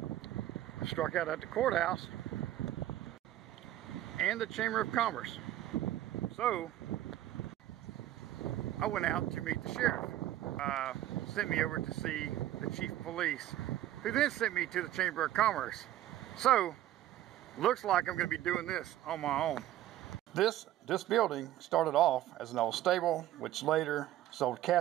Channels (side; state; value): left; quieter; 13.5 dB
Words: I struck out at the courthouse and the Chamber of Commerce, so I went out to meet the sheriff. Sent me over to see the chief of police, who then sent me to the Chamber of Commerce. So, looks like I'm going to be doing this on my own. This building started off as an old stable, which later sold